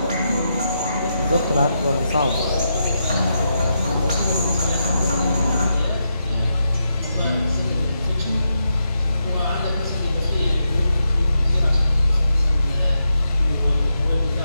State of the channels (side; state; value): both; inverted; correlation -0.84